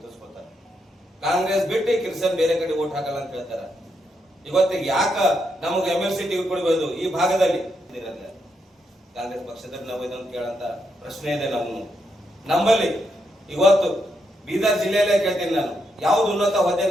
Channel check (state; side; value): normal; both; correlation 0.80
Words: ಕಾಂಗ್ರೆಸ್ ಬಿಟ್ಟು ಕ್ರಿಶ್ಚಿಯನ್ ಬೇರೆ ಕಡೆ ಓಟ್ ಹಾಕಲ್ಲ ಅಂತ ಹೇಳ್ತಾರೆ. ಇವತ್ತಿಗೆ ಯಾಕ ನಮಗೆ MLC ಟಿಕೆಟ್ ಕೊಡಬಹುದು ಈ ಭಾಗದಲ್ಲಿ? ಕಾಂಗ್ರೆಸ್ ಪಕ್ಷದಲ್ಲಿ ನಾವು ಇದನ್ನು ಕೇಳಂತ ಪ್ರಶ್ನೆ ಇದೆ ನಮ್ಮಲ್ಲಿ. ಇವತ್ತು ಬೀದರ್ ಜಿಲ್ಲೆಯಲ್ಲೇ ಕೇಳ್ತೀನಿ ನಾನು, ಯಾವ್ದು ಉನ್ನತ ಹುದ್ದೆ